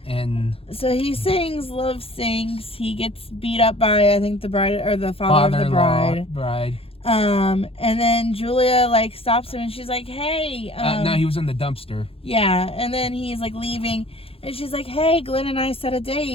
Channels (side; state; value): right; late; 0.27 ms